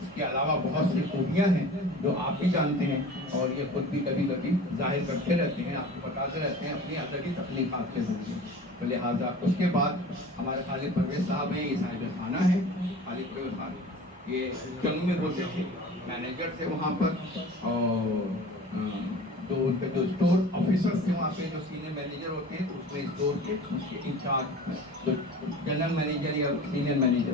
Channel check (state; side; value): normal; both; correlation 0.39